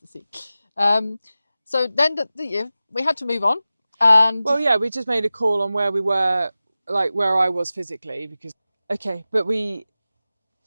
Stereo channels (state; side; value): inverted; both; correlation -0.95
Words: see. So then we had to move on, and we just made a call on where we were, like where I was physically, because it